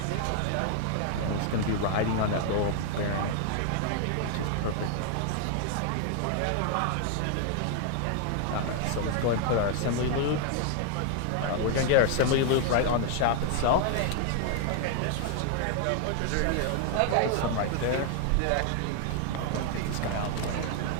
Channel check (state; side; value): different; both; correlation 0.00